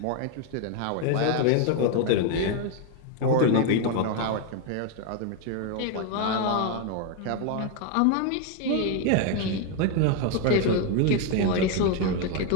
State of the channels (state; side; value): different; both; correlation 0.01